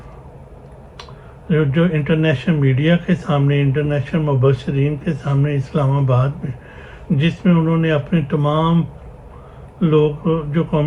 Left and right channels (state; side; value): identical; both; correlation 1.00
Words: جو انٹرنیشنل میڈیا کے سامنے، انٹرنیشنل مبصرین کے سامنے اسلام آباد میں، جس میں انہوں نے اپنے تمام لوگ جو